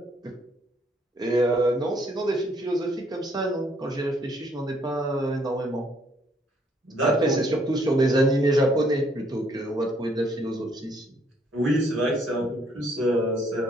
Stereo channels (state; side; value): normal; both; correlation 0.67